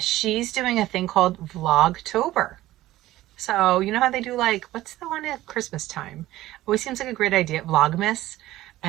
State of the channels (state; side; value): quieter; left; 15.7 dB